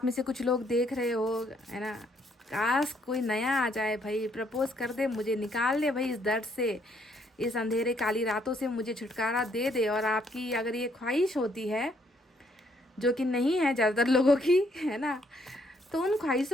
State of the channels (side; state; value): both; normal; correlation 0.69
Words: में से कुछ लोग देख रहे हो, है ना। काश कोई नया आ जाए भाई, प्रपोज कर दे मुझे, निकाल ले भाई इस दर्द से, इस अंधेरे काली रातों से मुझे छुटकारा दे दे। और आपकी अगर ये ख्वाहिश होती है, जो कि नहीं है ज़्यादातर लोगों की, है ना, तो उन